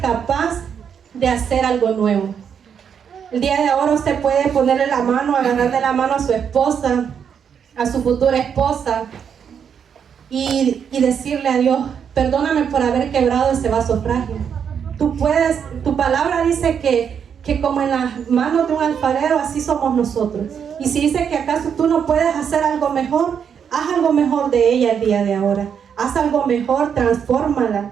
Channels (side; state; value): left; quieter; 7.6 dB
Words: capaz de hacer algo nuevo. El día de ahora usted puede ponerle la mano, agarrarle la mano a su esposa, a su futura esposa, y decirle a Dios: perdóname por haber quebrado ese vaso frágil. Tu palabra dice que como en las manos de un alfarero, así somos nosotros. Y si dice que acaso tú no puedes hacer algo mejor, haz algo mejor de ella el día de ahora. Haz algo mejor, transfórmala.